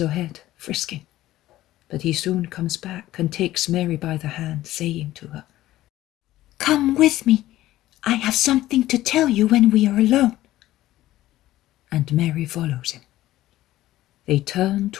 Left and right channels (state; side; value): quieter; right; 15.2 dB